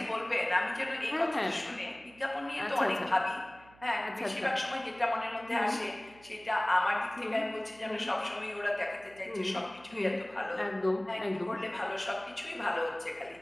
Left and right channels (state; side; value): noise; right; hum, 25 dB below the sound